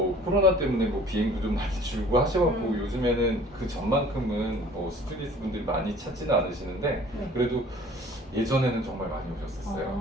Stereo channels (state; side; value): normal; both; correlation 0.50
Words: 코로나 때문에 뭐 비행도 좀 많이 줄고 하셔갖고 음. 요즘에는 그 전만큼은 뭐 스튜디오스 분들이 많이 찾지는 않으시는데 네. 그래도 예전에는 정말 많이 오셨었어요.